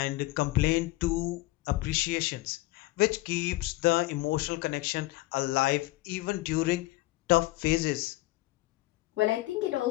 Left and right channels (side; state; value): right; quieter; 18.9 dB